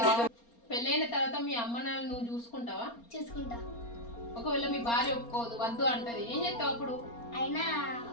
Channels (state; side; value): late; right; 4.3 ms